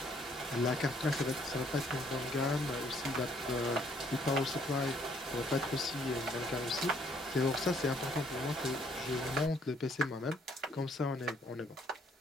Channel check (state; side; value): normal; both; correlation 0.65